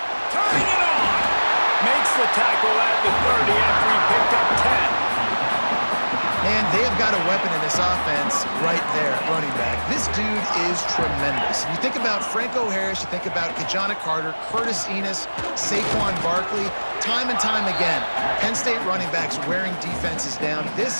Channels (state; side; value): inverted; both; correlation -1.00